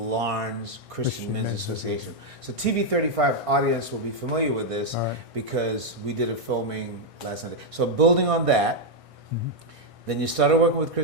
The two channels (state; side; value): late; left; 1.6 ms